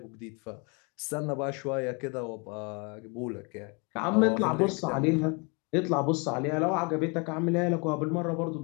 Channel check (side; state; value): right; quieter; 31.8 dB